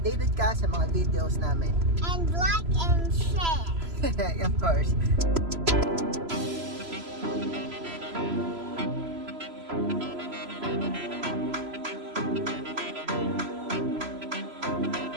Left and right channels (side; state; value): left; late; 3.0 ms